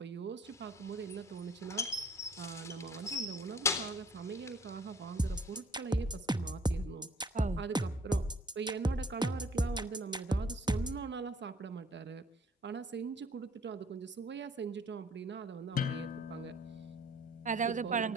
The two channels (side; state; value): both; normal; correlation 0.56